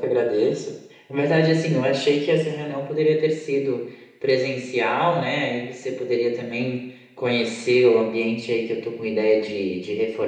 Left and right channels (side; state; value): both; identical; correlation 1.00